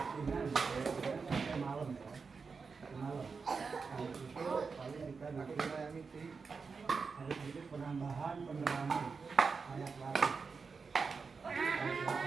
sampai malam ya. Malam. Nah, itu paling kita nanti ada sedikit penambahan penerangan anak latih.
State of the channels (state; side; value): quieter; left; 5.0 dB